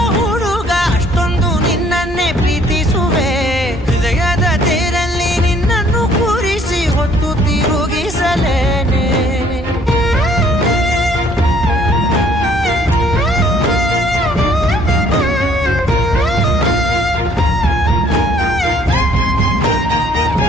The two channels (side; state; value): both; normal; correlation 0.61